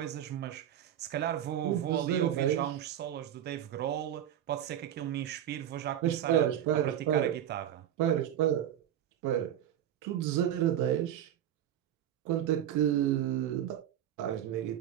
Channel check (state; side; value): quieter; left; 10.9 dB